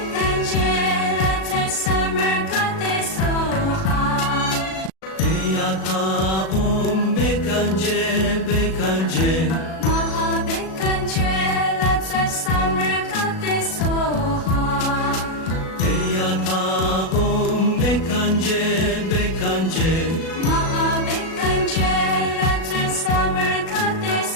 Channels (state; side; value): late; right; 37 ms